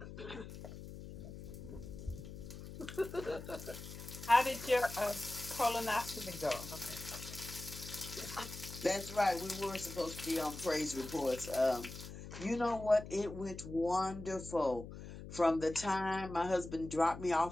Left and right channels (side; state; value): left; noise; hum, 11 dB below the sound